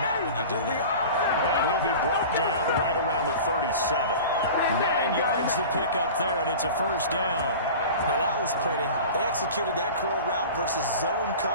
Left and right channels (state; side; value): inverted; both; correlation -0.36